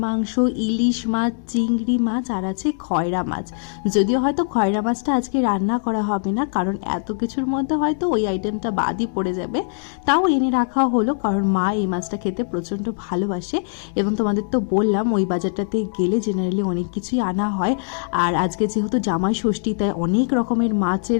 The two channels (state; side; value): silent; right; 65 dB below the other